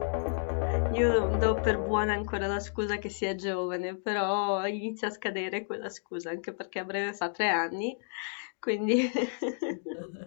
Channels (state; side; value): silent; right; digital silence